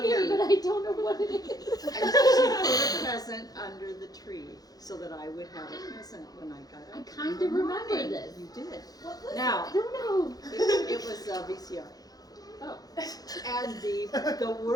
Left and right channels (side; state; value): right; late; 0.18 ms